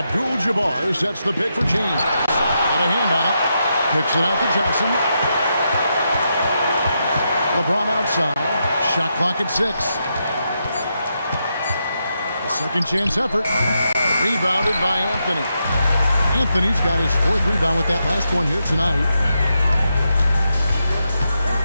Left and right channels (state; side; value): inverted; both; correlation -0.84